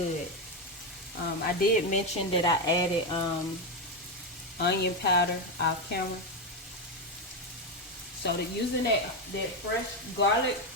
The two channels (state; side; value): normal; both; correlation 0.09